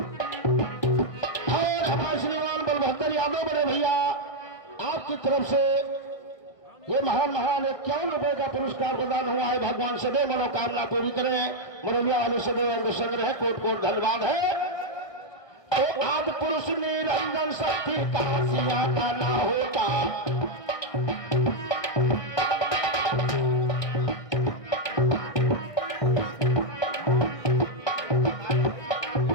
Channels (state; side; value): late; right; 1.6 ms